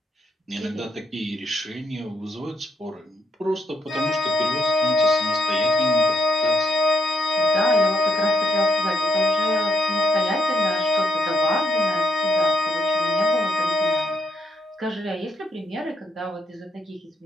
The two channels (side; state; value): both; normal; correlation 0.75